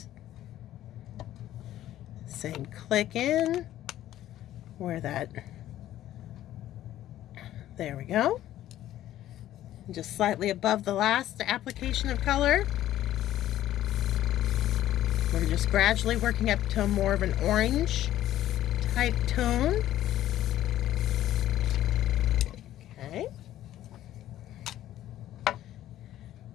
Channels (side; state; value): right; quieter; 13.1 dB